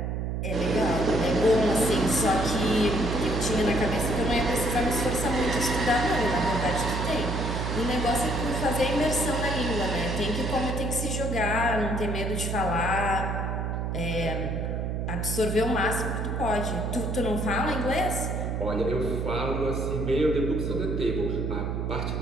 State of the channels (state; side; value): noise; right; hum, 1 dB below the sound